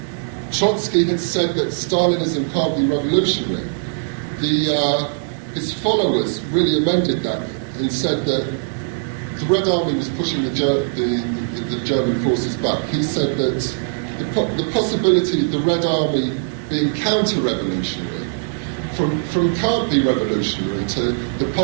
Trotsky had said that Stalinism can't be revolutionary. His followers really amended that and said that the Red Army was pushing the German forces back. He said that the possibility of the Red Army being counter-revolutionary, from can't be revolutionary to the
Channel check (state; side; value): silent; left; 63 dB below the other